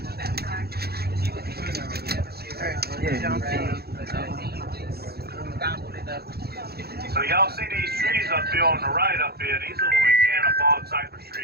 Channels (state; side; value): late; left; 0.46 ms